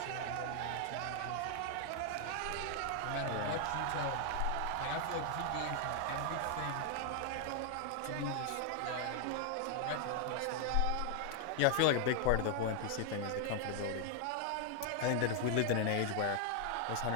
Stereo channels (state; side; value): different; both; correlation 0.00